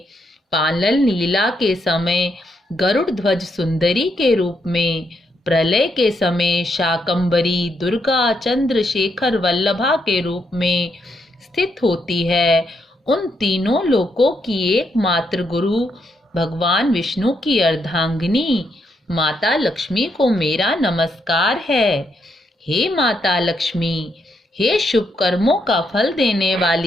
पालन लीला के समय गरुड़ ध्वज सुंदरी के रूप में, प्रलय के समय शाकंभरी दुर्गा चंद्रशेखर वल्लभा के रूप में स्थित होती है, उन तीनों लोकों की एकमात्र गुरु भगवान विष्णु की अर्धांगिनी माता लक्ष्मी को मेरा नमस्कार है। हे माता लक्ष्मी, हे शुभ कर्मों का फल देने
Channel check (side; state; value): both; normal; correlation 0.78